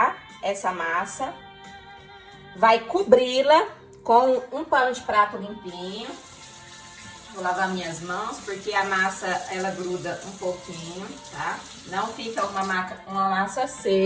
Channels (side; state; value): both; identical; correlation 1.00